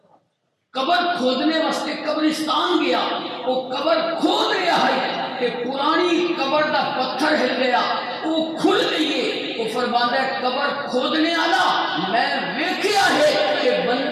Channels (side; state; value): both; identical; correlation 1.00